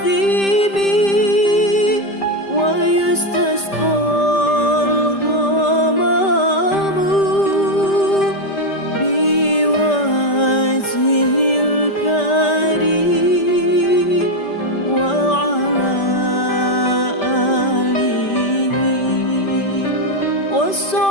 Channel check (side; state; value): right; late; 5.1 ms